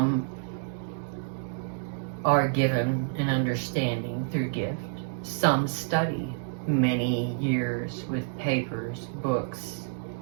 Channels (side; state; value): left; silent; digital silence